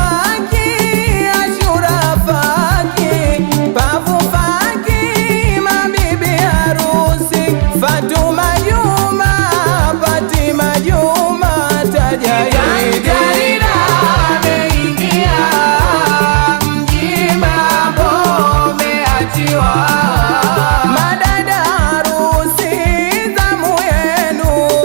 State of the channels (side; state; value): left; silent; digital silence